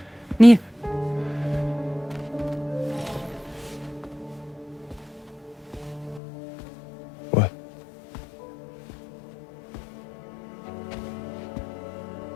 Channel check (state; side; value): drops out; right; at 6.2 s